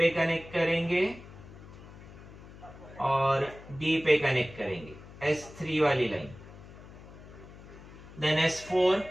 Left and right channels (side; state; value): left; noise; hum, 17 dB below the sound